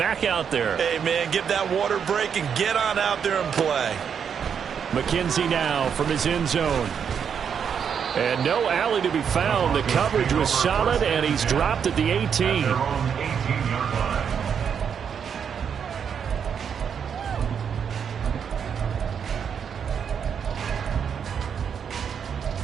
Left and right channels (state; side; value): quieter; left; 7.4 dB